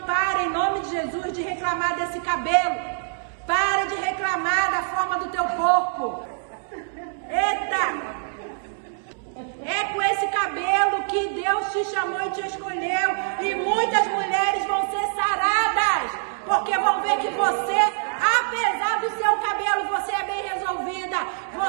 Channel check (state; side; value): silent; left; 62 dB below the other